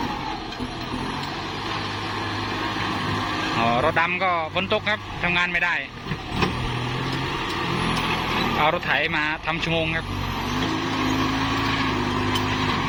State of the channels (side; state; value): both; identical; correlation 1.00